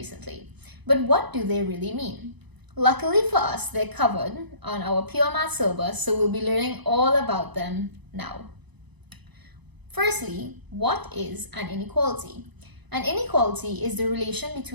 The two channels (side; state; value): left; late; 1.0 ms